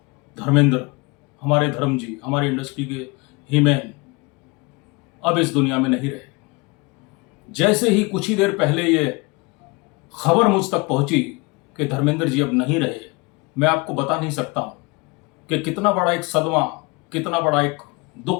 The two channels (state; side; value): quieter; right; 26.6 dB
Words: धर्मेंद्र, हमारे धर्म जी, हमारी इंडस्ट्री के हीमैन अब इस दुनिया में नहीं रहे। जैसे ही कुछ ही देर पहले ये खबर मुझ तक पहुंची कि धर्मेंद्र जी अब नहीं रहे, मैं आपको बता नहीं सकता हूं कि कितना बड़ा एक सदमा, कितना बड़ा एक